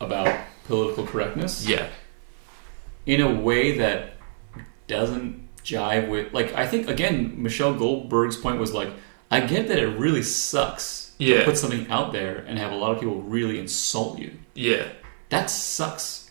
political correctness. Yeah. In a way that doesn't jive with, like, I think again Michelle Goldberg's point was like, I get that it really sucks to put something out there and have a lot of people really insult you. Yeah. That sucks.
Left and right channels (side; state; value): left; silent; 58 dB below the other